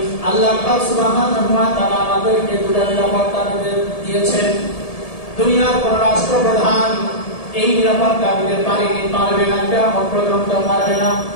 আল্লাহ পাক সুবহানাহু ওয়া তাআলা আমাদেরকে দুটা নিরাপত্তা দিয়েছেন। দুনিয়ার কোন রাষ্ট্রপ্রধান এই নিরাপত্তা দিতে পারবে না, কিয়ামত পর্যন্ত পারবে না।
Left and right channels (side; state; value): right; late; 1.7 ms